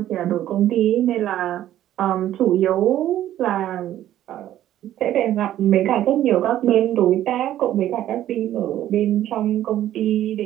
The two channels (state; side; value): quieter; left; 12.5 dB